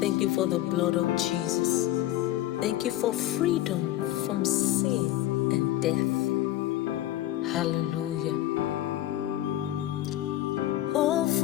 you for the blood of Jesus. Thank you for freedom from sin and death. Hallelujah.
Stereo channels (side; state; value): right; quieter; 14.3 dB